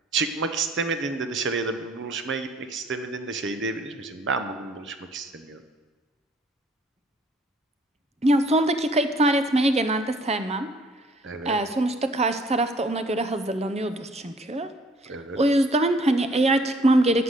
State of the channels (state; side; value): normal; both; correlation 0.59